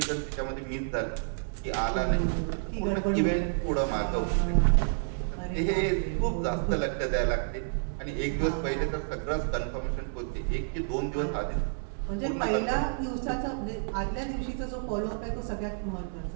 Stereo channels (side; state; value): left; silent; 58 dB below the other